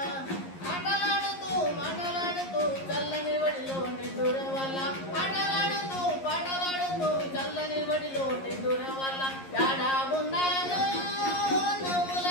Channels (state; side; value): late; right; 11 ms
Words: ఆటలాడుతూ మాటలాడుతూ చల్లని వడిలో నిద్దుర వల్ల ఆటలాడుతూ పాటలాడుతూ చల్లని వడిలో నిద్దుర వల్ల యాడా ఉన్నాదో నవ్వుల